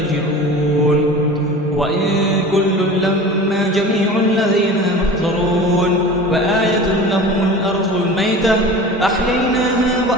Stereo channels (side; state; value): both; normal; correlation 0.36